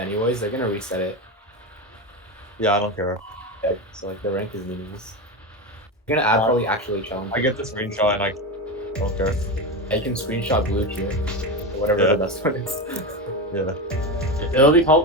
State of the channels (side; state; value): both; normal; correlation 0.18